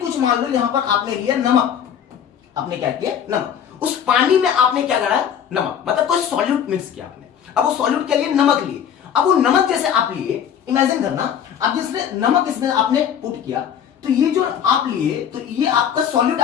मान लो, यहां पर आपने लिया नमक, आपने क्या किया, नमक, उस पानी में आपने क्या करा, नमक, मतलब कोई सॉल्यूट मिक्स किया आपने। अब वो सॉल्यूट के लिए नमक लिए, अब वो नमक जैसे आप लिए, इमेजिन करना, अब जिसने नमक इसमें आपने पुट किया, तो ये जो आप लिए, तो ये आपका सॉल्यूट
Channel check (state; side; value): quieter; right; 8.7 dB